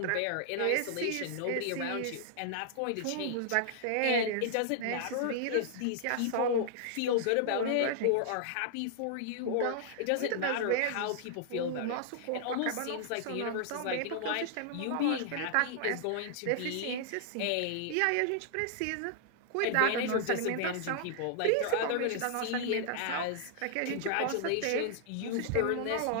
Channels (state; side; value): different; both; correlation -0.01